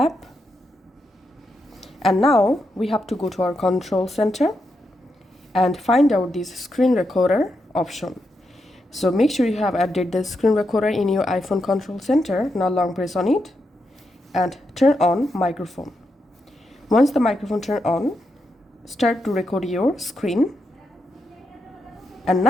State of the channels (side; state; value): both; normal; correlation 0.84